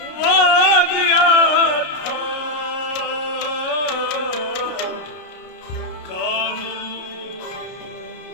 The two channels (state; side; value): late; right; 33 ms